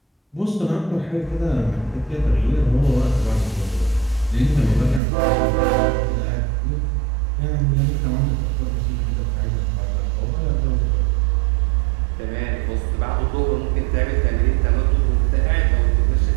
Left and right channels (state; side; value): drops out; left; at 5.0 s